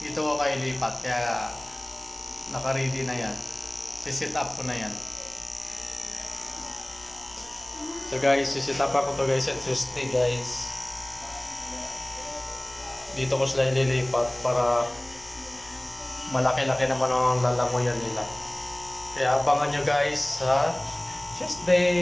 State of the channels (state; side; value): noise; left; hum, 23 dB below the sound